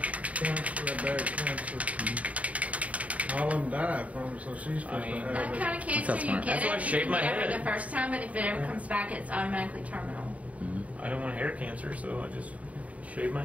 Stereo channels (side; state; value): left; late; 0.068 ms